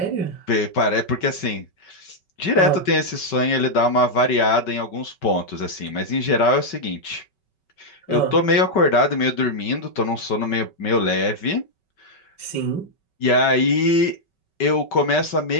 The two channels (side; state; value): right; late; 5.3 ms